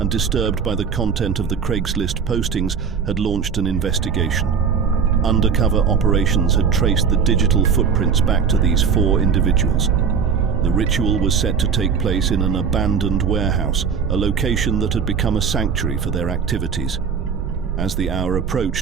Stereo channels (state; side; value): quieter; left; 6.4 dB